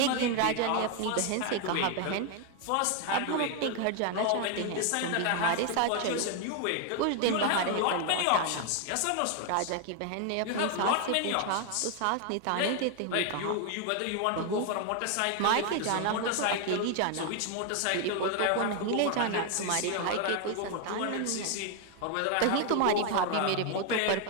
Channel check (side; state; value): both; different; correlation 0.01